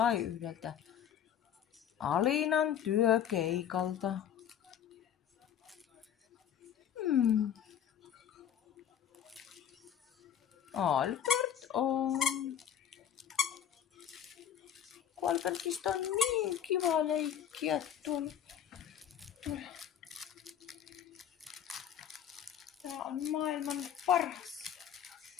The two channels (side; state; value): right; quieter; 9.4 dB